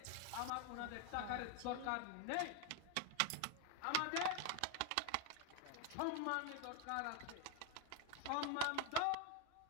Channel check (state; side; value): different; both; correlation 0.01